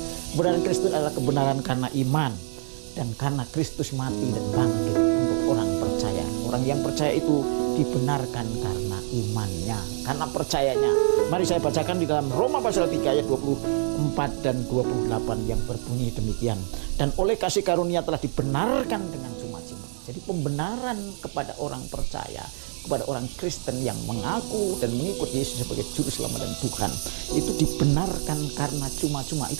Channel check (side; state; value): left; silent; 61 dB below the other